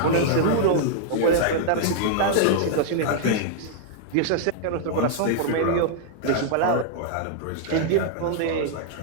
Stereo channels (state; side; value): different; both; correlation -0.01